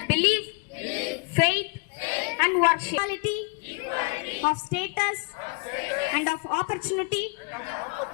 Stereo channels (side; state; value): right; quieter; 30.0 dB